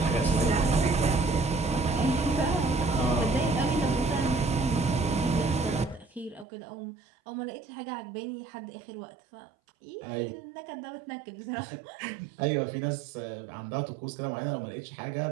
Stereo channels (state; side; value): drops out; left; at 6.5 s